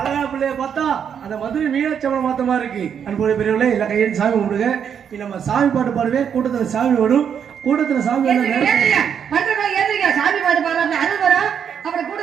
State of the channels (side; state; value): left; quieter; 7.9 dB